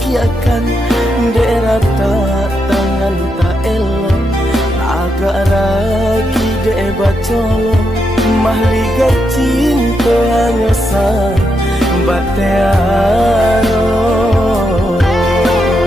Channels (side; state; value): both; normal; correlation 0.82